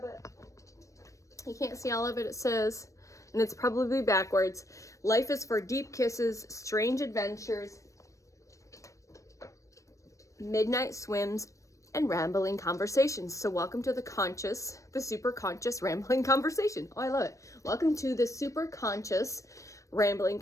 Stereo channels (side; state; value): right; late; 0.15 ms